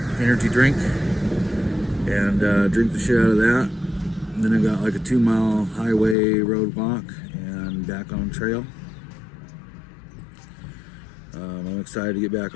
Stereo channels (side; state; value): right; drops out; at 6.2 s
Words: energy drink and drink the shit out of that. And then I got like a 2-mile highway road walk and back on trail. I'm excited to get back